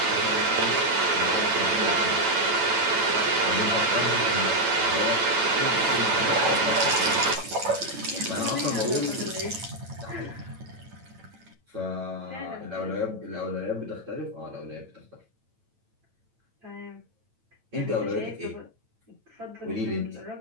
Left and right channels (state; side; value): late; left; 9.0 ms